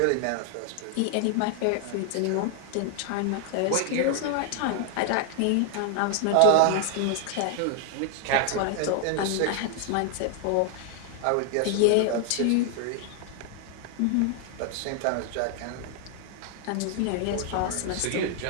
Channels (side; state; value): both; different; correlation 0.00